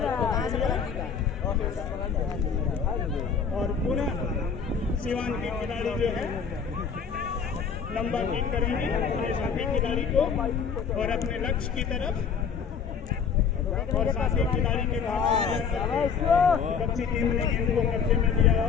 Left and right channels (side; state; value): right; quieter; 6.4 dB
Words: और पुनः सिवान के खिलाड़ी जो है लंबा किक करेंगे अपने साथी खिलाड़ी को और अपने लक्ष्य की तरफ, और साथी खिलाड़ी के बच्ची टीम ने गेंद को कब्जे में लिया